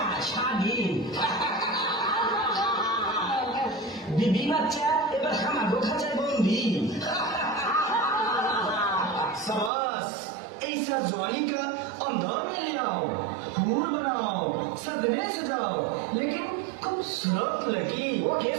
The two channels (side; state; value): left; drops out; at 9.7 s